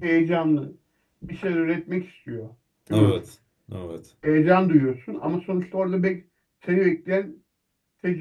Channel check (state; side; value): identical; both; correlation 1.00